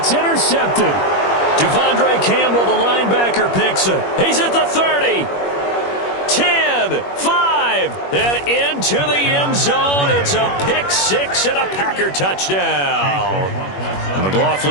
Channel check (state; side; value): late; right; 21 ms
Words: intercepted. Devondre Campbell, the linebacker, picks it. He's at the 30. 10, 5, and into the end zone. It's a pick 6 and a Packer touchdown.